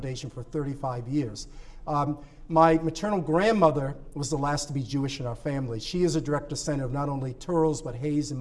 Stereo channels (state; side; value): identical; both; correlation 1.00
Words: for 35 years. My maternal grandmother was the last to be Jewish in our family. She is a direct descendant of not only Touros, but Hayes and